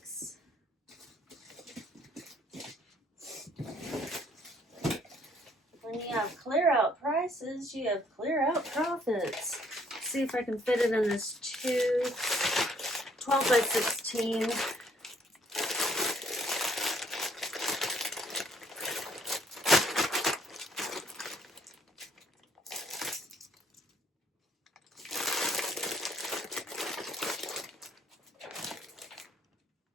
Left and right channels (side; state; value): both; normal; correlation 0.64